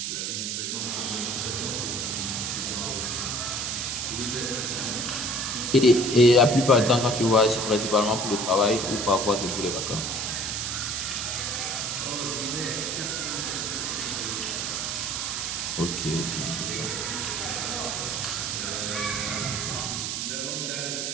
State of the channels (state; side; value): noise; right; hiss, 2 dB below the sound